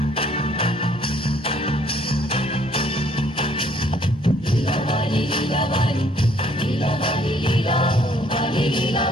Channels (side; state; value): both; normal; correlation 0.63